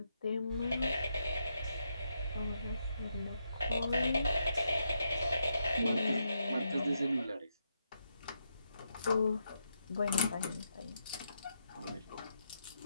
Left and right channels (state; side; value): inverted; both; correlation -0.81